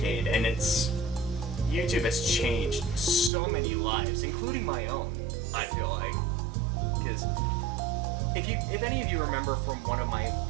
and YouTube has changed so many lives, including my own, I feel like. Because if any of you remember from one of my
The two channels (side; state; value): left; drops out; at 3.3 s